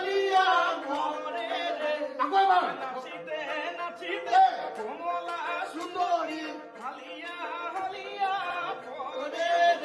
ঘরে রে নাচিতে নাচিতে কমলা সুন্দরী হালিয়া হালিয়া ঘরে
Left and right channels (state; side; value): identical; both; correlation 1.00